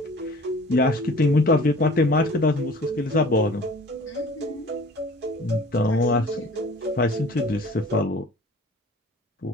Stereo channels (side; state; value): both; normal; correlation 0.46